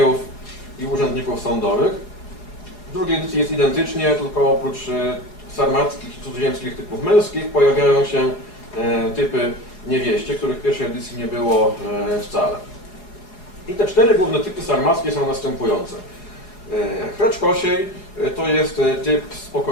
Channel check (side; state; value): right; late; 4.7 ms